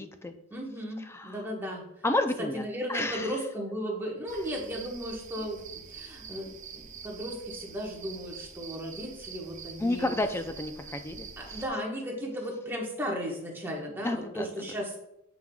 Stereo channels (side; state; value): both; normal; correlation 0.51